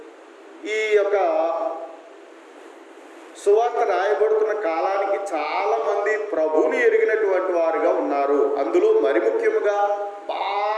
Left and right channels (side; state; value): both; identical; correlation 1.00